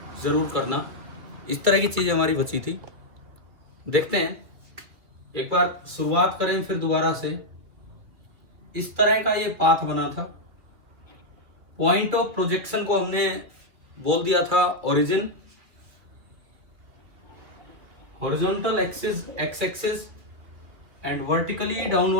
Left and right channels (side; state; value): left; late; 2.4 ms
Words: ज़रूर करना। इस तरह की चीज़ें हमारी बची थी। देखते हैं, एक बार शुरुआत करें फिर दोबारा से। इस तरह का ये पाथ बना था। पॉइंट ऑफ प्रोजेक्शन को हमने बोल दिया था origin, horizontal axis x axis and vertically